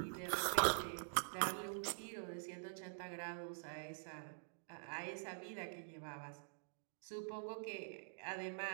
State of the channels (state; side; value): silent; left; digital silence